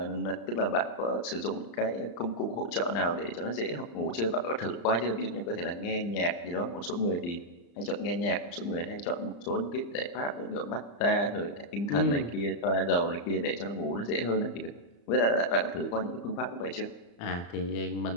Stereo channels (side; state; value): right; late; 35 ms